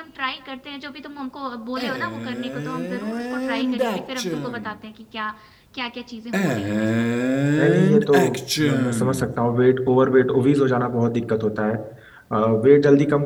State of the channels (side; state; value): both; identical; correlation 1.00